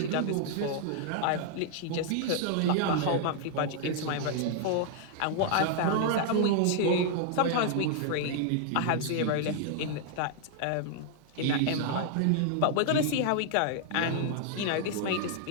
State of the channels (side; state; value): both; different; correlation 0.00